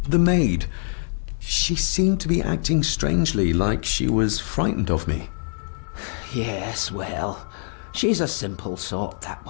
The maid. She seemed to be acting strangely, like she was frightened of me. Yes, well, she's a simple sort, that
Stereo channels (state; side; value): silent; right; 63 dB below the other